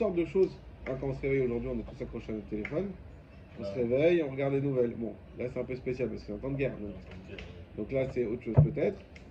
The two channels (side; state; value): both; identical; correlation 1.00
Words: de choses. Hein, quand on se réveille aujourd'hui, on est tous accrochés à notre téléphone. On se réveille, on regarde les nouvelles. Bon, là c'est un peu spécial parce que c'est un temps de guerre. Donc là c'est autre chose peut-être.